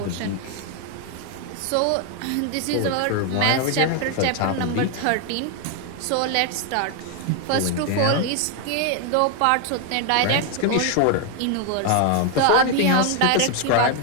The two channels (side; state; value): both; different; correlation 0.00